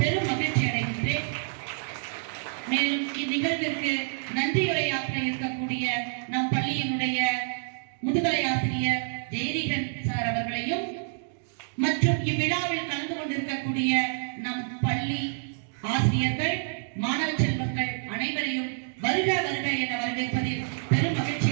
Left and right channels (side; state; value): left; silent; digital silence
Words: மகிழ்ச்சி அடைகின்றேன். மேலும் இந்நிகழ்விற்கு நன்றியுரையாற்ற இருக்கக்கூடிய நம் பள்ளியினுடைய முதுகலை ஆசிரியர் ஜெயரீகன் சார் அவர்களையும் மற்றும் இவ்விழாவில் கலந்து கொண்டிருக்கக்கூடிய நம் பள்ளி ஆசிரியர்கள் மாணவ செல்வங்கள் அனைவரையும் வருக வருக என வரவேற்பதில் பெரும் மகிழ்ச்சி